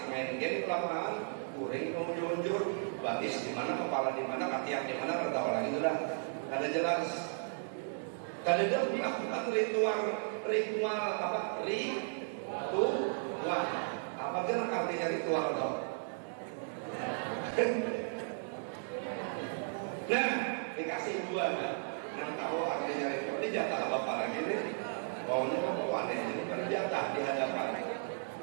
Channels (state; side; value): silent; left; 54 dB below the other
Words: main game di lapangan, guring mau lunjur, batis di mana, kepala di mana, katiak di mana, tertawa lagi sudah. Ada jelas. Kalau dia melakukan ritual apa? Ritual. Apa kira artinya ritual toh? Nah, dikasih 2 kan? Yang tahu artinya ritual ini jatah bapak lagi nih. Maunya kamu aneh ini kan jatah di hadapan.